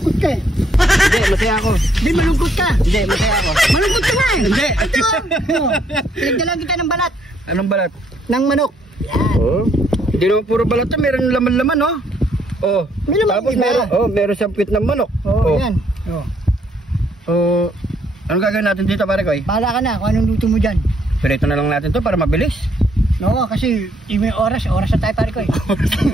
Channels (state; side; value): normal; both; correlation 0.69